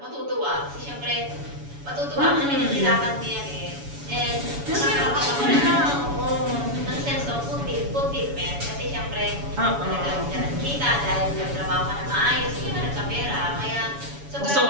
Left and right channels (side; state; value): left; late; 7.1 ms